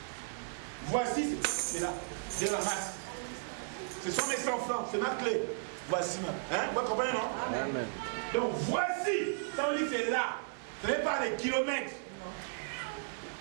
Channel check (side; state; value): left; silent; digital silence